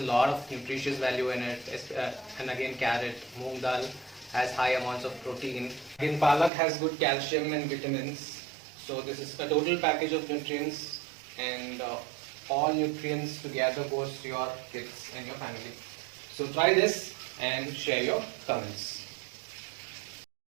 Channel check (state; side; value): drops out; left; at 6.5 s